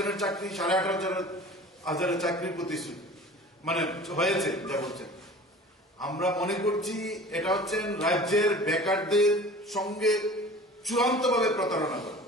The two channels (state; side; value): normal; both; correlation 0.42